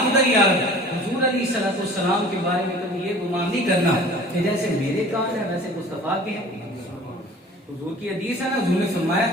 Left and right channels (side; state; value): both; normal; correlation 0.45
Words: ادھر ہی آ رہا ہے. حضور علیہ السلام کے بارے میں کبھی یہ گمان نہیں کرنا کہ جیسے میرے کان ہیں ویسے مصطفیٰ کے ہیں. حضور کی حدیث ہے نا, حضور نے فرمایا